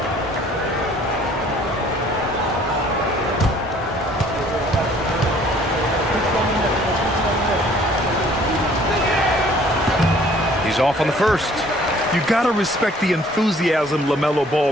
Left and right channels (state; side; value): normal; both; correlation 0.56